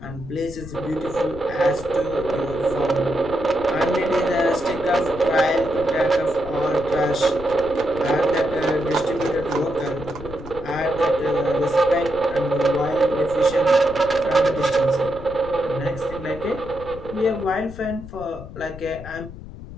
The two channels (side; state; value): left; noise; rumble, 14 dB below the sound